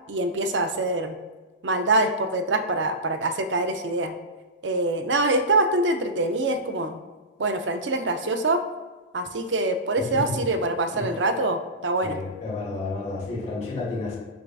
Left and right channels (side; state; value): both; normal; correlation -0.18